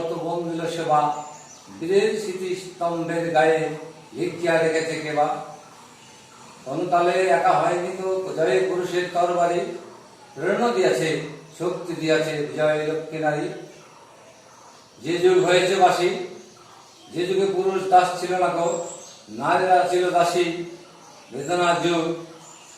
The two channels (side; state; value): both; identical; correlation 1.00